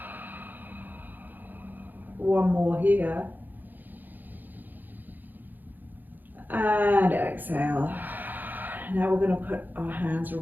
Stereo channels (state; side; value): late; left; 0.087 ms